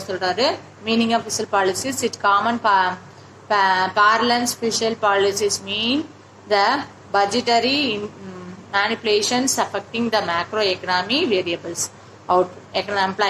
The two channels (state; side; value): identical; both; correlation 1.00